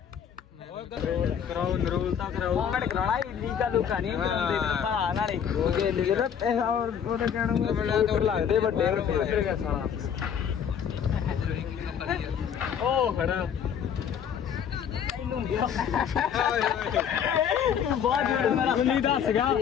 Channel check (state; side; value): quieter; right; 8.2 dB